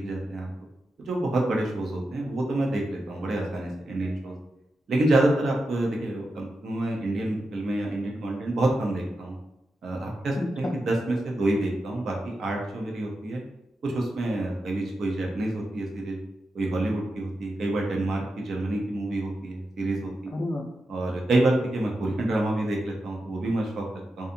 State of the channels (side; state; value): both; normal; correlation 0.89